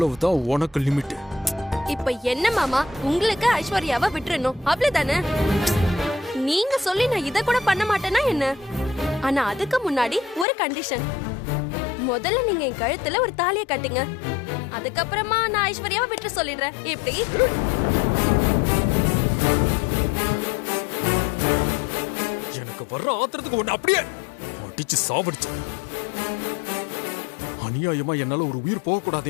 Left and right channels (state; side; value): drops out; right; at 10.5 s